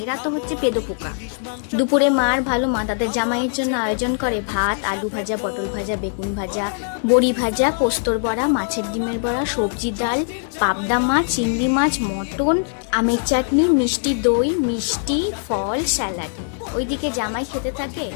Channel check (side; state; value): right; silent; digital silence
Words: তো হচ্ছে পেদোপোকা। দুপুরে মার ভালো মা তাদের জামাইয়ের জন্য আয়োজন করে ভাত, আলু ভাজা, পটল ভাজা, বেগুন ভাজা, বড়ি ভাজা, পোস্তর বড়া, মাছের ডিমের বড়া, সবজি ডাল, পাবদা মাছ, চিংড়ি মাছ, মটন, আমের চাটনি, মিষ্টি দই, মিষ্টি ফল, স্যালাড। ওইদিকে জামাই খেতে থাকে